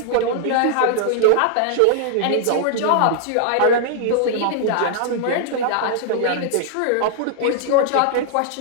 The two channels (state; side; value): different; both; correlation 0.00